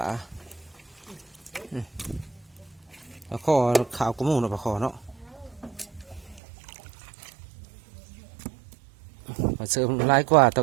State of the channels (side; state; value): left; drops out; at 6.4 s